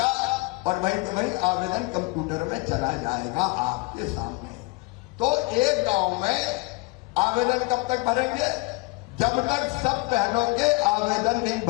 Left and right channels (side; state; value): right; quieter; 25.0 dB